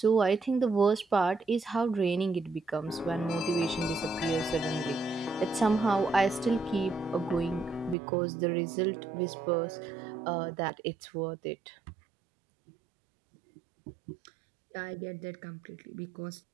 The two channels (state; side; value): drops out; left; at 8.0 s